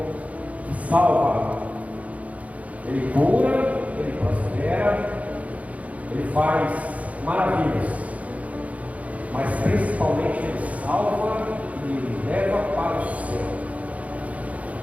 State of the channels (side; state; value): left; late; 0.068 ms